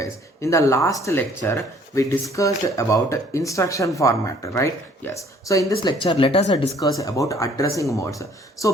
In the last lecture, we discussed about instruction format, right? Yes. So in this lecture, let us discuss about addressing modes.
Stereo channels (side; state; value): both; normal; correlation 0.58